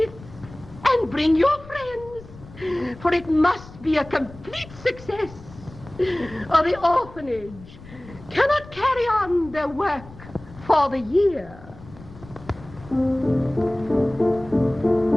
and bring your friends, for it must be a complete success, or the orphanage cannot carry on their work for the year.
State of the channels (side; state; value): left; noise; rumble, 19 dB below the sound